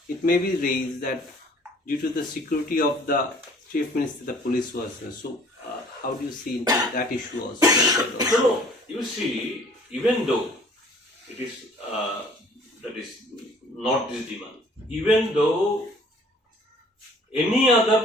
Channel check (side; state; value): both; normal; correlation 0.54